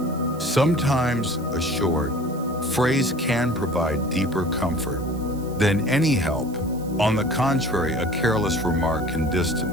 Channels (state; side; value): noise; right; hiss, 22 dB below the sound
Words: Sometimes a short phrase can provide deeper comfort than any help. On the contrary, a careless remark can